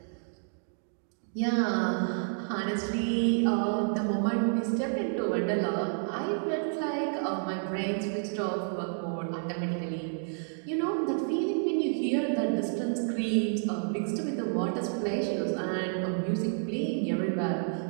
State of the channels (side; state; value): left; silent; digital silence